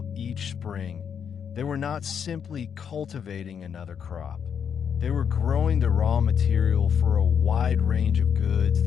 each spring, they were not simply cultivating another crop. They were growing the raw material for a wide range of goods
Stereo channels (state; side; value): quieter; right; 7.6 dB